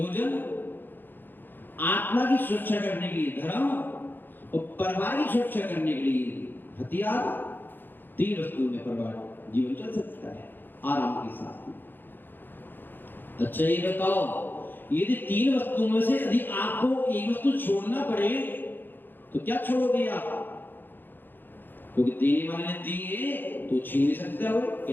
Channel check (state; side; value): late; right; 0.094 ms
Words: आत्मा की सुरक्षा करने के लिए धर्म और परिवार की सुरक्षा करने के लिए हथियार। 3 वस्तुओं में परिवार जीवन चल सकता है आराम के साथ। अच्छा ये बताओ, यदि 3 वस्तुओं में से यदि आपको एक वस्तु छोड़ना पड़े तो क्या छोड़ोगे आप? क्योंकि देने वाले ने दी है तो छीन नहीं सकता हो कि